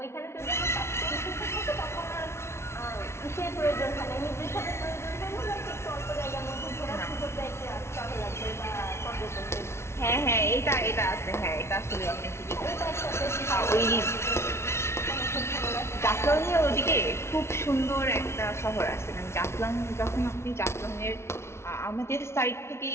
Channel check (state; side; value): late; right; 0.13 ms